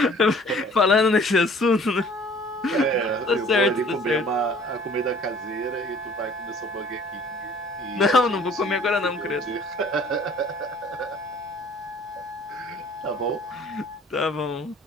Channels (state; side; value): normal; both; correlation 0.53